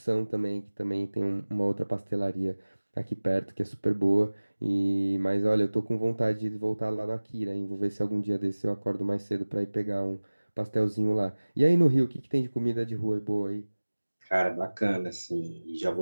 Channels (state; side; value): inverted; both; correlation -1.00